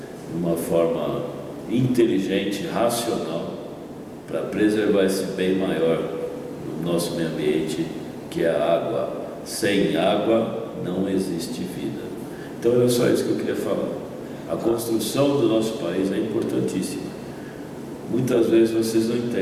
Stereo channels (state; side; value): identical; both; correlation 1.00